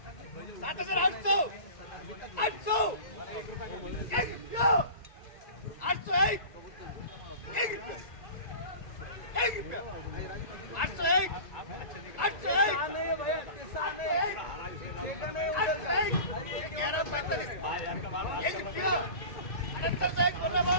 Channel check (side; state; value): right; late; 1.9 ms